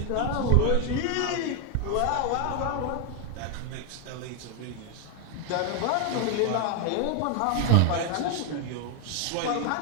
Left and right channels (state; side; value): different; both; correlation 0.01